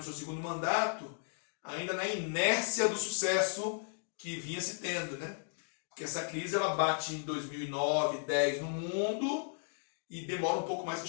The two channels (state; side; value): silent; right; digital silence